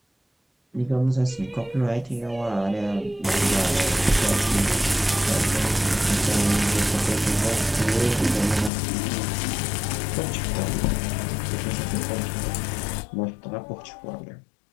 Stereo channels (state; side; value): drops out; right; at 8.7 s